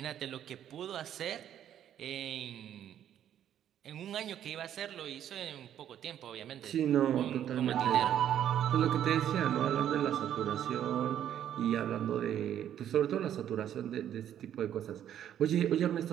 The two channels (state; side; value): quieter; left; 10.4 dB